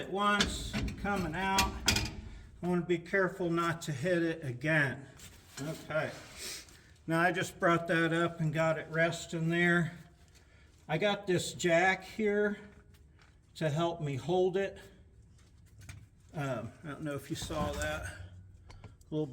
once coming out. I want to be careful not to hit it again. Okay. Now I just brought that up and got it resting there. I got this jack here to help me hold it. I don't know if you saw that little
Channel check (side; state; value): both; identical; correlation 1.00